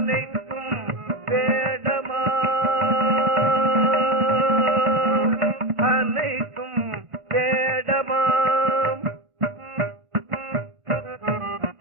வேடமா அனைத்தும் வேடமாம்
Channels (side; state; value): left; late; 1.8 ms